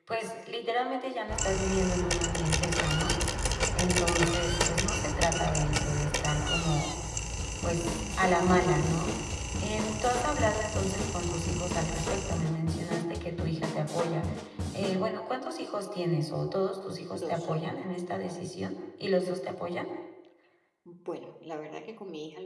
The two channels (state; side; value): identical; both; correlation 1.00